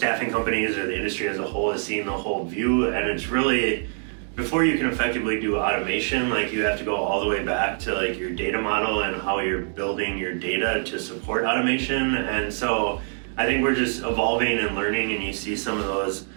companies or the industry as a whole is seeing the whole view, and it's really, before you can effectively do automation, like you have to go all the way back to like your data model and how you're building your data to support automation. And so I think we're just evolving and learning, and you see some of those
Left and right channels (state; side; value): silent; left; 59 dB below the other